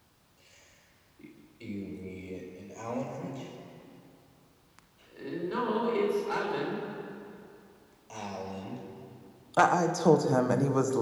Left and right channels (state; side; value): identical; both; correlation 1.00